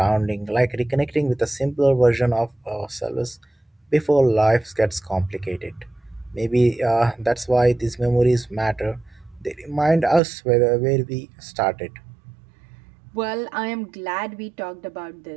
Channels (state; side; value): drops out; left; at 10.2 s